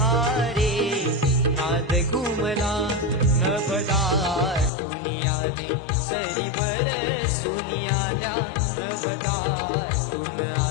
रे नाद घुमला नभदा तुनी आले सरी बरसूनी आल्या नभदा तुन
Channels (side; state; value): right; drops out; at 4.7 s